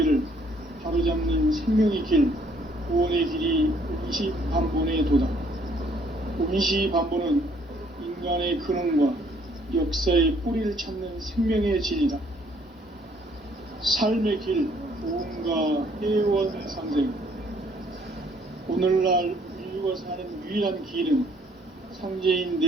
바로잡는 생명의 길, 구원의 길이 운시반본의 도다. 운시반본은 인간의 근원과 역사의 뿌리를 찾는 생명의 진리다. 삶의 길, 보험과 회원 상생. 오늘날 인류가 사는 유일한 길은 상제인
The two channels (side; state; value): both; normal; correlation 0.64